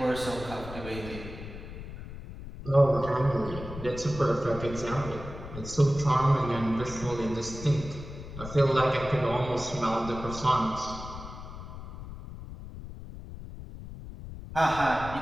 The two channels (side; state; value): left; noise; rumble, 11 dB below the sound